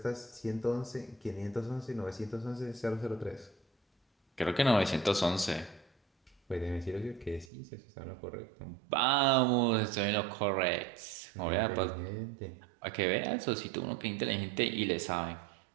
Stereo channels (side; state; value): left; drops out; at 7.5 s